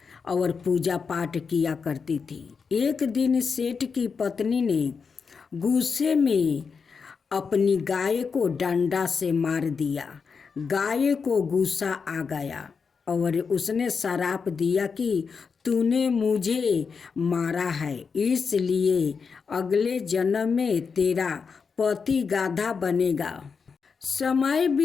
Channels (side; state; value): right; quieter; 5.5 dB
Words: और पूजा पाठ किया करती थी। एक दिन सेठ की पत्नी ने गुस्से में अपनी गाय को डंडा से मार दिया। गाय को गुस्सा आ गया और उसने श्राप दिया कि तूने मुझे मारा है, इसलिए अगले जन्म में तेरा पति गाधा बनेगा। समय